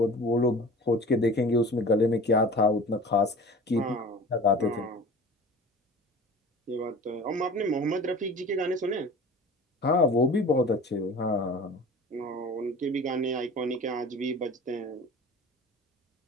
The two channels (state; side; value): normal; both; correlation 0.40